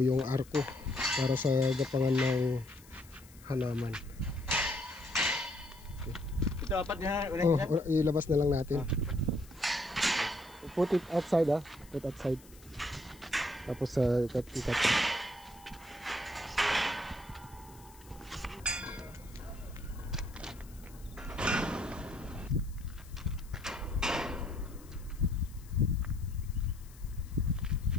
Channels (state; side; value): noise; left; hiss, 23 dB below the sound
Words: yung arco para sa gapangan ng halaman. Ito apat niya. Ilabas na lang natin. Put it outside, put outside. Tapos sa ikat.